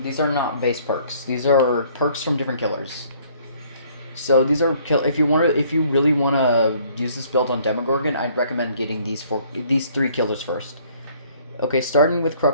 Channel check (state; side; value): inverted; both; correlation -0.60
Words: are not base perks. These are perks from different killers. So these are if you really want to use this build on Demogorgon, I'd recommend getting these 3 killers first. Okay, starting with